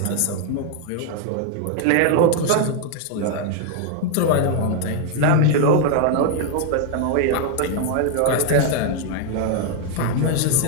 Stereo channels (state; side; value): different; both; correlation 0.01